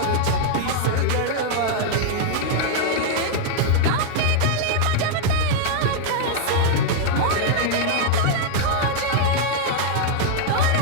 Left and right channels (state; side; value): different; both; correlation -0.01